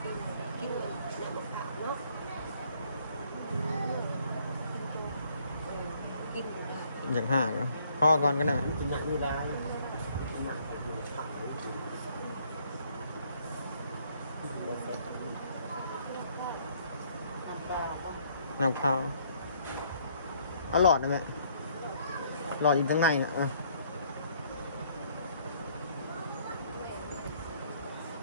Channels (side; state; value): both; inverted; correlation -0.64